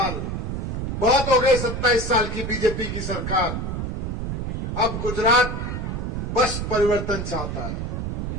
बहुत हो गए 27 साल की बीजेपी की सरकार। अब गुजरात बस परिवर्तन चाहता है।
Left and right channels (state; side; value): noise; right; rumble, 3 dB below the sound